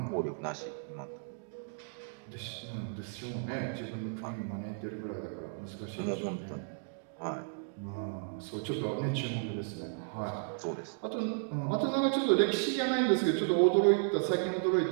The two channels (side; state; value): left; silent; digital silence